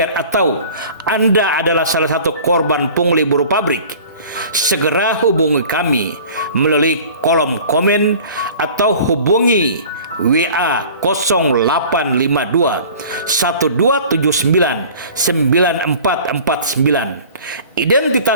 atau Anda adalah salah satu korban pungli buruh pabrik, segera hubungi kami melalui kolom komen atau hubungi WA 0852 1279 9449.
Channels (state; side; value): inverted; both; correlation -0.44